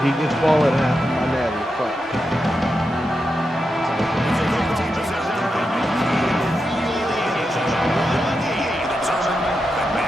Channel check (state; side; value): normal; both; correlation 0.87